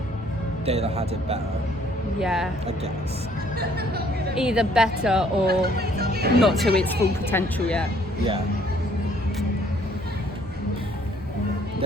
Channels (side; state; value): both; normal; correlation 0.62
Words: They'd have had it better. Yeah. I guess. Either better or not to its full potential yet. Yeah.